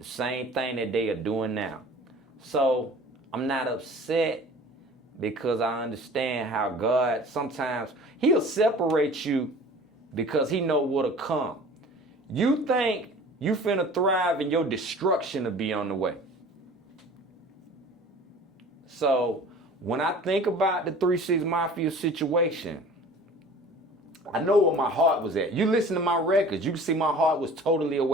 same thing that they are doing now. So I'm not upset because I understand how God sometimes, he'll separate you because he know what'll come. You think you finna thrive and your destruction will be on the way. So when I think about the 3-6 Mafia situation, I know where my heart was at. You listen to my records, you can see my heart was totally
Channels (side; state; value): both; normal; correlation 0.44